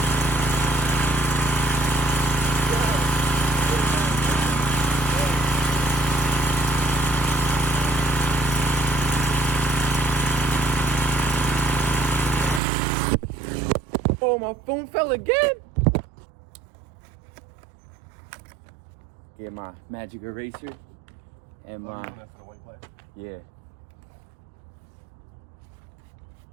Oh, my phone fell again. Get my magic eraser and my yeah.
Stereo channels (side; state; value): left; drops out; at 12.6 s